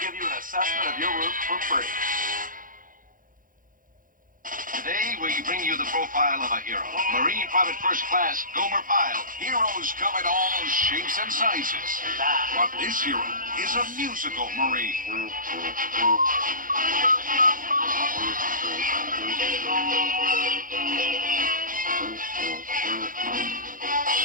you an assessment of your roof for free. Today, we bring you the profile of a hero. Marine Private First Class Gomer Pyle. Heroes come in all shapes and sizes. But this hero is a musical Marine.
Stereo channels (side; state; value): left; late; 0.40 ms